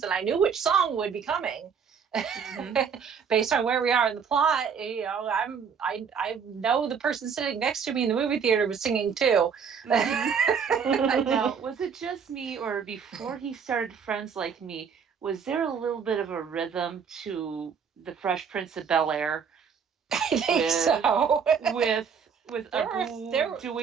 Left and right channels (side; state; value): left; quieter; 6.6 dB